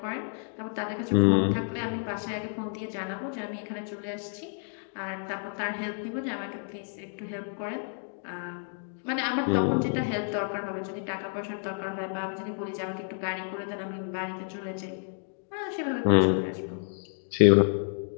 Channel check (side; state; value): right; silent; 58 dB below the other